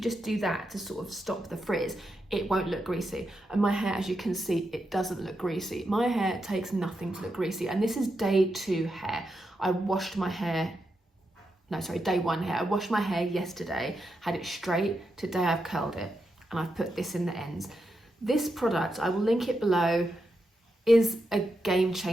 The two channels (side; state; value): both; normal; correlation 0.85